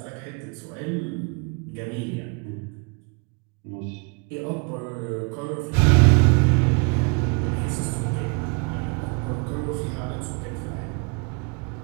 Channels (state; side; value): quieter; left; 32.9 dB